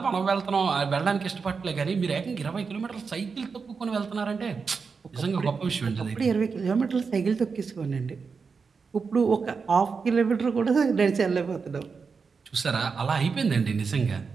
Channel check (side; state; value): left; quieter; 5.2 dB